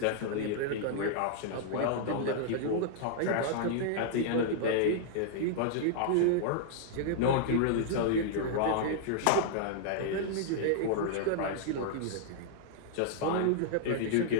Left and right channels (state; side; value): different; both; correlation -0.01